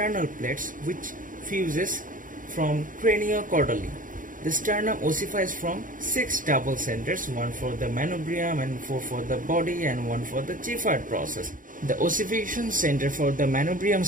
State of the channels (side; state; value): left; late; 0.39 ms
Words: plates, which fuses from craniocaudally. The sternum ossifies from 6 double centers, one for the manubrium and 4 for the body and 1 for the Giffard process. The ossification center for the manubrium